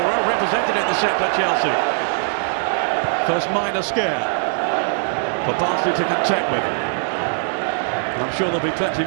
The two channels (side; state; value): left; silent; digital silence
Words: well represented in the centre, Chelsea. First minor scare for Barnsley to contend with. And I'm sure there'll be plenty